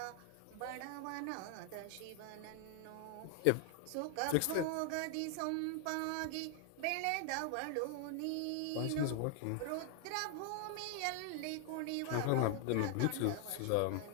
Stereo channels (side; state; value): both; different; correlation 0.00